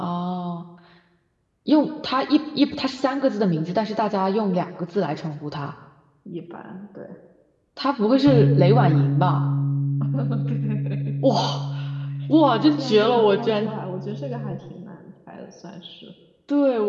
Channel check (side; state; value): both; identical; correlation 1.00